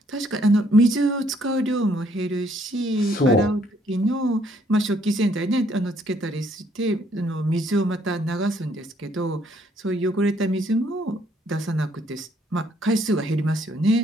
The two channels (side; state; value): both; normal; correlation 0.67